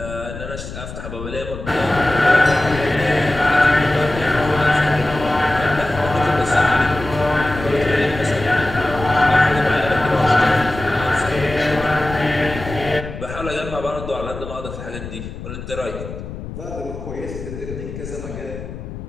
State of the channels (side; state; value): left; noise; rumble, 10 dB below the sound